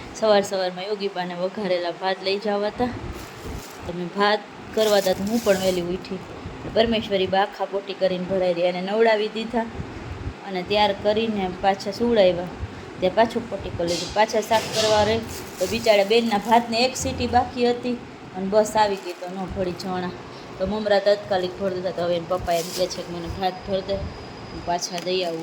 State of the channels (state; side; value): identical; both; correlation 1.00